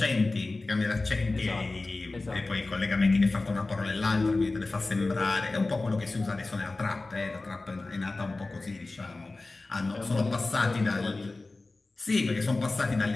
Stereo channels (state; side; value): quieter; right; 3.3 dB